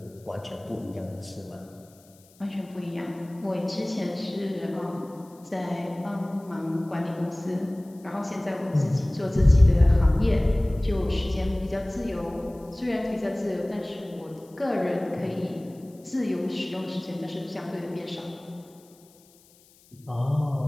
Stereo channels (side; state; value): left; noise; hiss, 28 dB below the sound